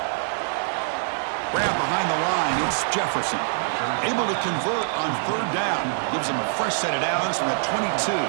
Grab behind the line. It's Jefferson. Able to convert on 3rd down. Gives him a fresh set of downs from the 22.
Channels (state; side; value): silent; left; digital silence